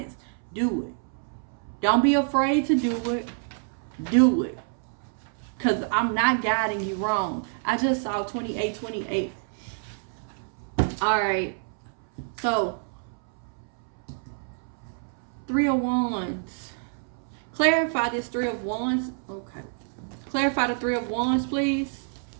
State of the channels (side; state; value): left; silent; 60 dB below the other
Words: do it. Don't be afraid to do it. Do it. Because I'm not guiding you wrong. I just saw 2828. Alright. So, 3 of Wands. Clarify this 3 of Wands. Okay. Clarify the 3 of Wands, please.